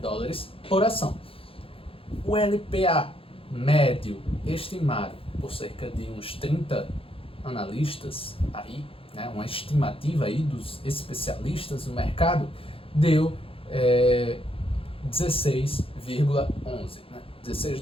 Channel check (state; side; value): late; right; 0.27 ms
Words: por ação. O LPA médio estimado por cerca de uns 30 analistas aí, né, uma estimativa aí dos especialistas do mercado, deu 16,11, né? 16